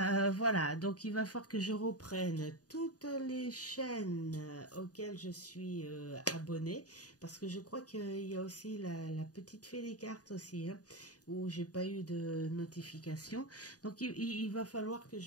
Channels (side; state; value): right; late; 0.68 ms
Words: voilà. Donc, il va falloir que je reprenne toutes les chaînes auxquelles je suis abonnée. Parce que je crois qu'il y a aussi la petite fée des cartes aussi, hein, où j'ai pas eu de notification. Donc, il va falloir que